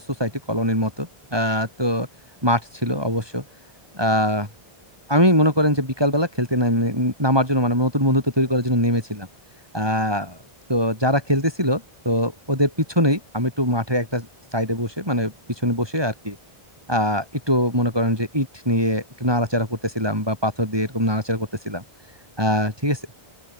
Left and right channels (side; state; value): left; late; 1.2 ms